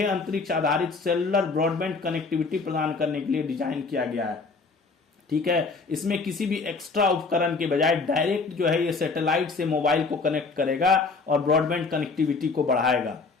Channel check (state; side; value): quieter; right; 4.3 dB